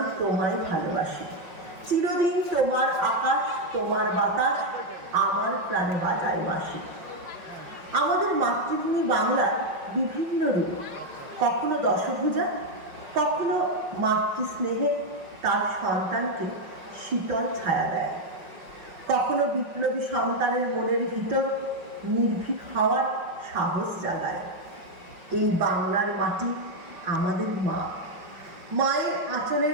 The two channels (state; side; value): late; left; 5.5 ms